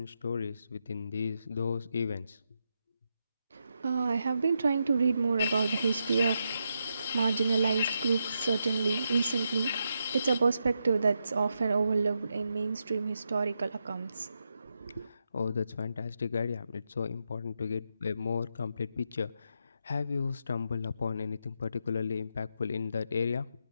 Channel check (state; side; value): inverted; both; correlation -0.84